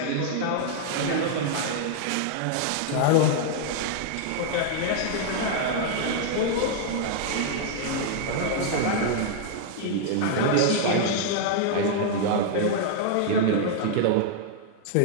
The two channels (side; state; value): both; different; correlation -0.01